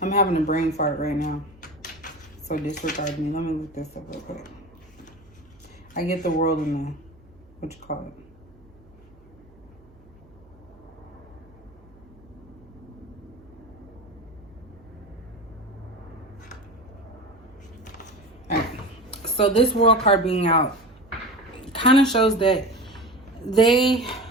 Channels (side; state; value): right; noise; hum, 27 dB below the sound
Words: I'm having a brain fart right now. So disregard me. Let me look this up real quick. I get the World in the, what you call it. Alright. So this World card being out kind of shows that they